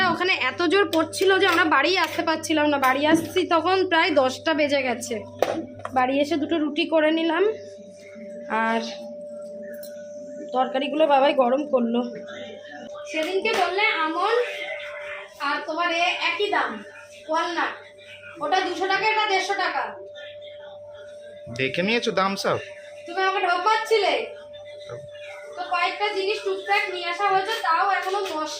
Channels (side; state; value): both; identical; correlation 1.00